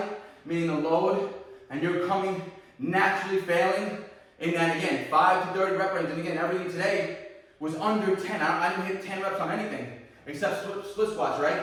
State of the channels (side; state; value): both; identical; correlation 1.00